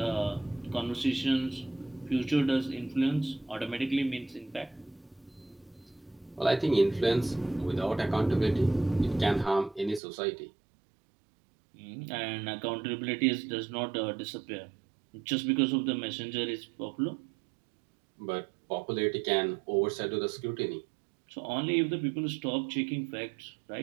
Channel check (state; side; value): drops out; left; at 10.0 s